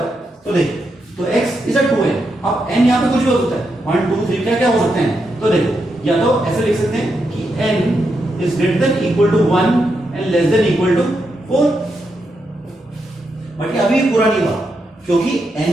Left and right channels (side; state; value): both; normal; correlation 0.83